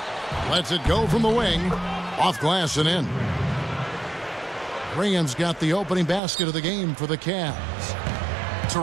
Lets it go from the wing. Off glass and in. Graham's got the opening basket of the game for the Cavs.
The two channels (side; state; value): left; drops out; at 6.2 s